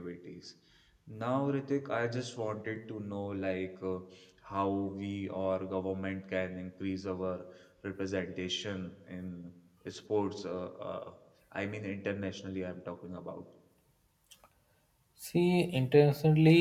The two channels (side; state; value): both; identical; correlation 1.00